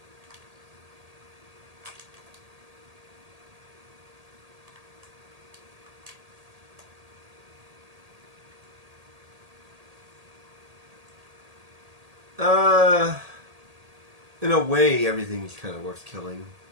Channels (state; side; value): late; left; 1.8 ms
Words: In a way, everything's kind of worth killing.